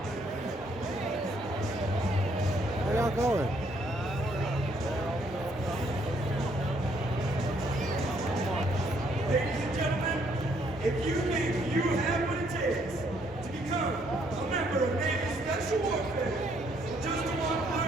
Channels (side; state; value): both; normal; correlation 0.68